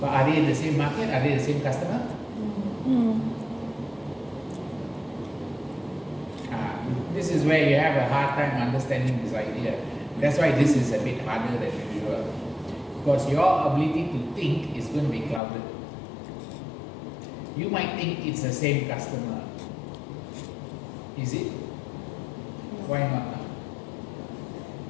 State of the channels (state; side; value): drops out; right; at 15.4 s